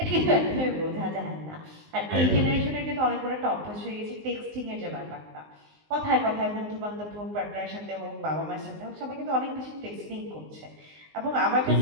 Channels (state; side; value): late; left; 19 ms